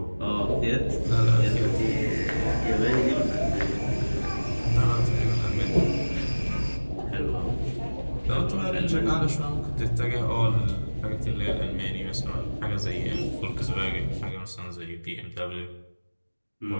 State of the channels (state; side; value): inverted; both; correlation -1.00